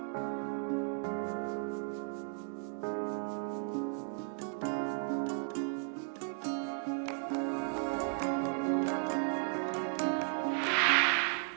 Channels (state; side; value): silent; left; 54 dB below the other